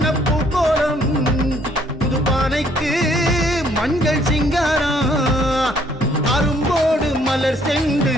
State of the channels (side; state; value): both; normal; correlation 0.64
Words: கோலம் புது பானைக்கு மஞ்சள் சிங்காரம் அரும்போடு மலர் சென்று